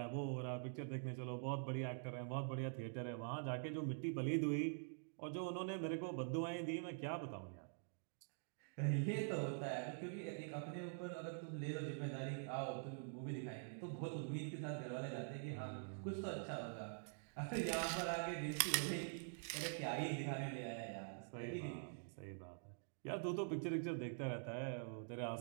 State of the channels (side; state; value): left; silent; digital silence